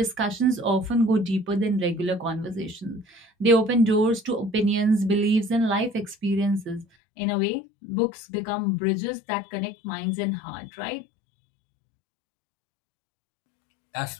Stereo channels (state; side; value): drops out; right; at 6.9 s